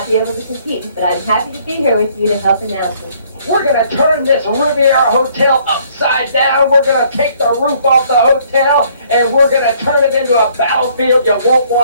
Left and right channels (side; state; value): both; inverted; correlation -0.62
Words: be able to compete, but I'm happy to be here with you to help announce it. We're going to turn this Riviera Hotel upside down. We're going to take the roof off the hotel, and we're going to turn it into a battlefield you won't